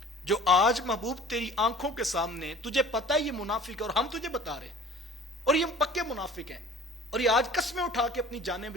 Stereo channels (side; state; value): both; normal; correlation 0.46